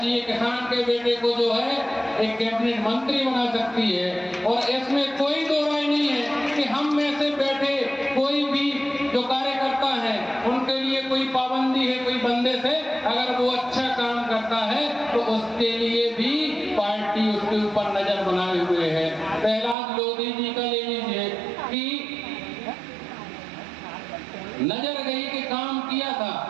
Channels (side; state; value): left; drops out; at 19.8 s